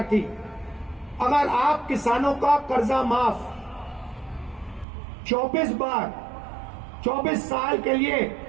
थी। अगर आप किसानों का कर्जा माफ 24 बार 24 साल के लिए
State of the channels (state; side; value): drops out; left; at 4.9 s